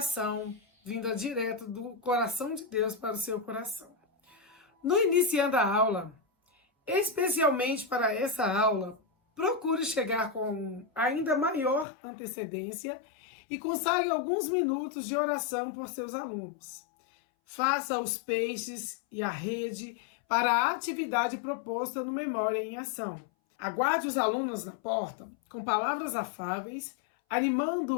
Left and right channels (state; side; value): drops out; right; at 11.9 s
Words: vinda direto do coração de Deus para o seu coração. No iniciando a aula, especialmente para essa aula, procure chegar com ainda maior antecedência e consagre alguns minutos de oração por seus alunos. Faça os peixes e a rede para a atividade proposta no Memória em Ação. Aguarde os alunos na porta com palavras afáveis,